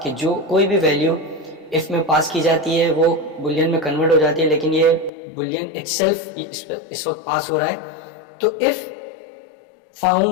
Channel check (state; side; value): drops out; right; at 5.1 s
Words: कि जो कोई भी वैल्यू इफ़ में पास की जाती है वो बुलियन में कन्वर्ट हो जाती है, लेकिन ये बुलियन इटसेल्फ इस वक्त पास हो रहा है। तो इफ़